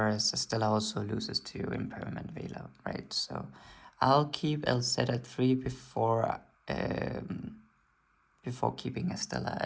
Estella also loses to Impermanent Veiler, right? So I'll keep LZ at 3 before keeping Estella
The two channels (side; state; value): both; identical; correlation 1.00